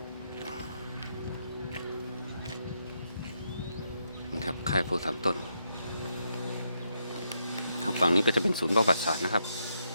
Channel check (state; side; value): inverted; both; correlation -0.80